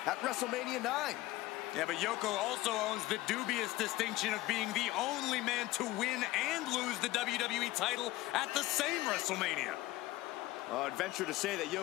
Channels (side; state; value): right; quieter; 17.7 dB